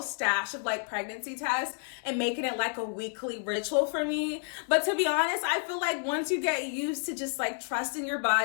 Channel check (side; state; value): right; silent; 58 dB below the other